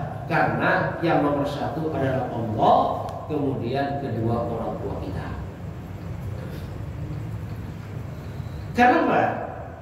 Karena yang nomor satu adalah Allah, kemudian kedua orang tua kita. Kenapa?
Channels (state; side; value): identical; both; correlation 1.00